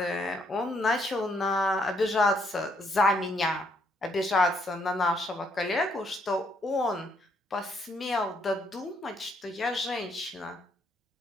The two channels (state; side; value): normal; both; correlation 0.72